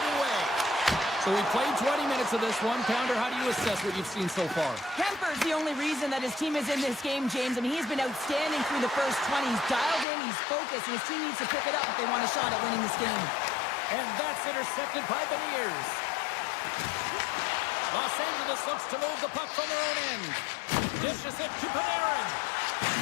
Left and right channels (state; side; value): drops out; right; at 10.1 s